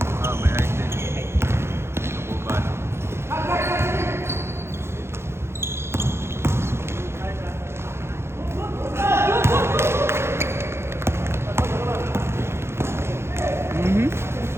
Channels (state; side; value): late; left; 0.12 ms